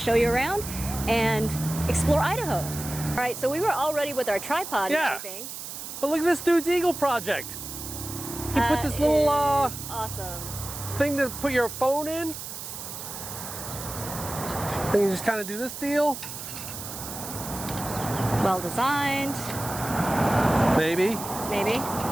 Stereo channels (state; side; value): noise; right; hiss, 9 dB below the sound